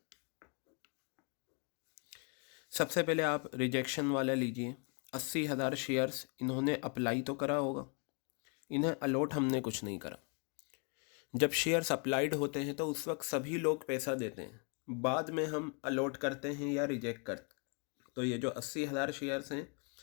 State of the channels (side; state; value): right; quieter; 37.4 dB